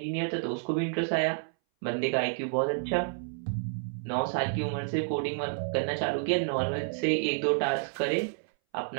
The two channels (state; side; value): silent; left; 58 dB below the other